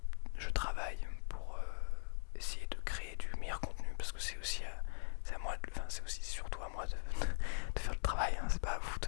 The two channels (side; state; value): right; silent; digital silence